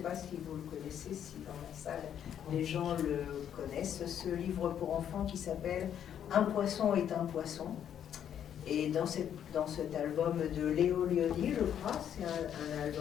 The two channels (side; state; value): right; quieter; 9.4 dB